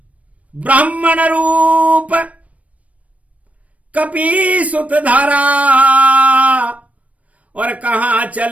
ब्राह्मण रूप कपि सुत धारा, और कहां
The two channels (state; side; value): late; left; 0.067 ms